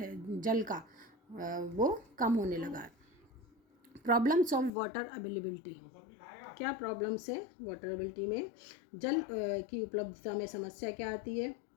जल का वो कम होने लगा है। प्रॉब्लम्स ऑफ वाटर अवेलेबिलिटी, क्या प्रॉब्लम्स है वाटर अवेलेबिलिटी में, जल की उपलब्धता में समस्या क्या आती है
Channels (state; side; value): drops out; right; at 4.7 s